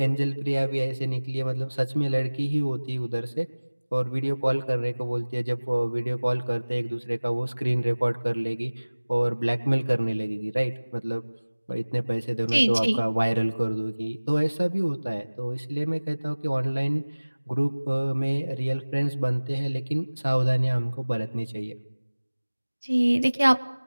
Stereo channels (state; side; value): inverted; both; correlation -1.00